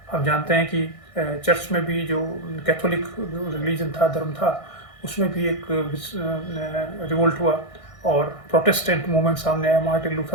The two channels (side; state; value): right; late; 1.6 ms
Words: हम जानते हैं कि चर्च में भी जो कैथोलिक रिलीजन था, धर्म था, उसमें भी एक रिवोल्ट हुआ और प्रोटेस्टेंट मूवमेंट सामने आया। मार्टिन